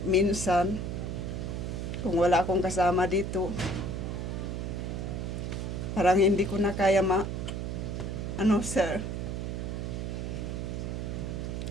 minsan, kung wala akong kasama dito, Parang hindi ko na kaya sir.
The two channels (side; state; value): right; noise; hum, 3 dB below the sound